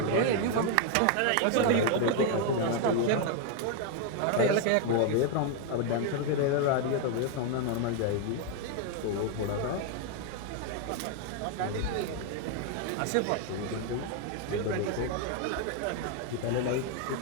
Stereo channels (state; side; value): different; both; correlation 0.01